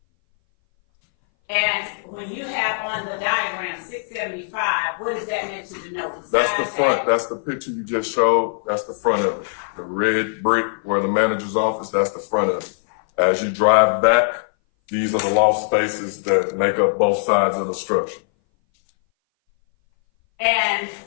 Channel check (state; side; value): silent; right; 60 dB below the other